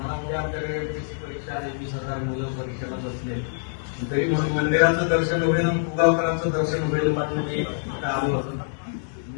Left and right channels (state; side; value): silent; right; digital silence